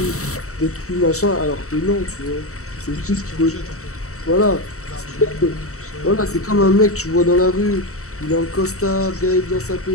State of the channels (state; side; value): late; right; 0.64 ms